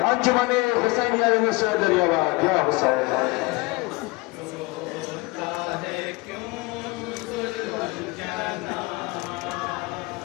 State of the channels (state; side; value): quieter; right; 24.2 dB